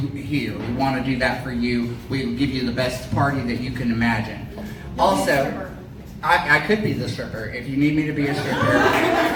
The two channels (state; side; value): identical; both; correlation 1.00